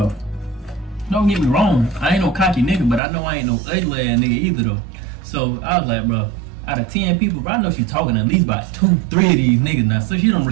don't get me wrong, I ain't no cocky nigga, but I know I ain't no ugly ass nigga either though. So I was like, bro, out of 10 people, bro, I know she talking at least about 2, 3 of these niggas now. So she don't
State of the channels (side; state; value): left; drops out; at 3.0 s